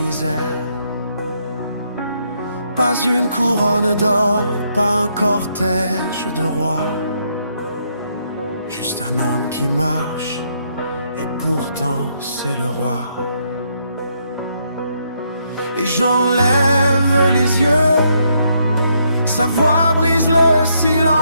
Pas une couronne d'or, pas un cortège de rois, juste un homme qui marche, et pourtant c'est le roi. Et j'enlève les yeux, sa voix brise le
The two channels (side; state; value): both; inverted; correlation -0.75